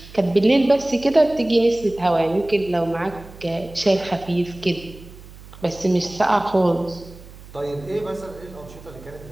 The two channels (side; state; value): right; noise; hum, 19 dB below the sound